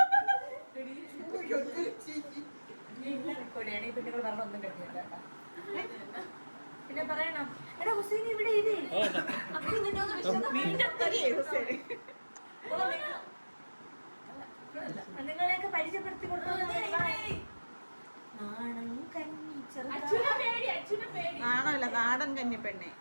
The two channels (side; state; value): both; inverted; correlation -1.00